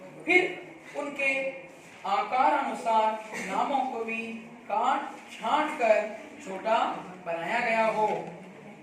फिर उनके आकार अनुसार नामों को भी काट छांट कर छोटा बनाया गया हो।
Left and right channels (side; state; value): both; identical; correlation 1.00